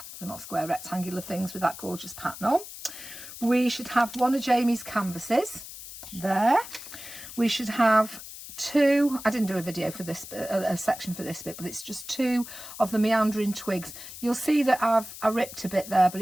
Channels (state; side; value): noise; left; hiss, 13 dB below the sound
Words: they're not square, rectangular things with that gorgeous pattern on. We should have 1 of Jamie's canvases there. We should have 2, I didn't do a video for this, a section for this bit, but it's just 2 of the Meandering twigs. You'll see that I ripped a bit there,